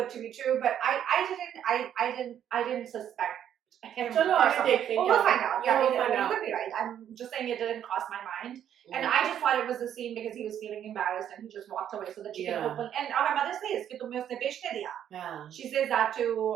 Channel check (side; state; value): left; quieter; 9.9 dB